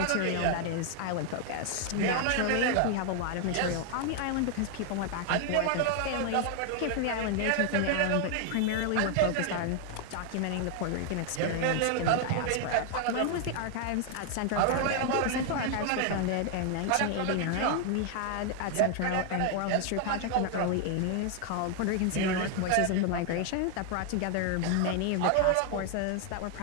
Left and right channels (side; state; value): both; different; correlation 0.01